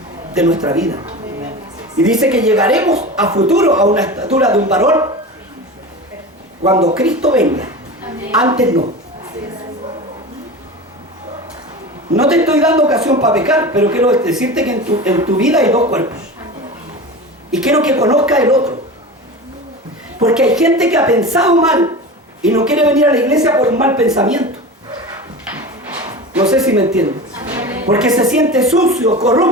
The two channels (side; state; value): both; normal; correlation 0.30